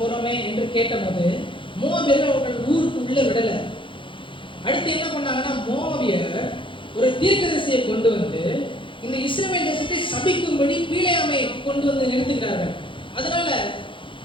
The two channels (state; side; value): late; right; 0.25 ms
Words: என்று கேட்டபோது மோவாபியர்கள் அவர்கள் ஊருக்கு உள்ள விடலை. அடுத்து என்ன பண்ணாங்கன்னா, மோவாபியர் ஒரு தீர்க்கதரிசியை கொண்டு வந்து இந்த இஸ்ரவேல் தேசத்தை சபிக்கும்படி பீலேயாமை கொண்டு வந்து நிறுத்துகிறார்கள். அதனால